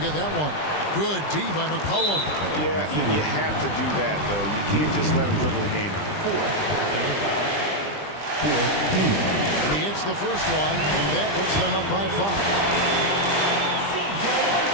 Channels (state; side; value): late; right; 20 ms